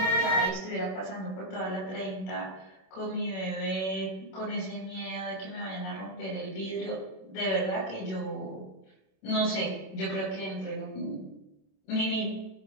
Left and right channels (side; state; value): right; late; 27 ms